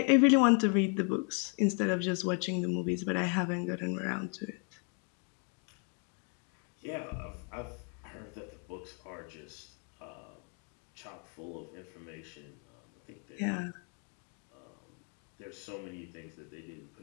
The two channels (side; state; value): right; quieter; 39.4 dB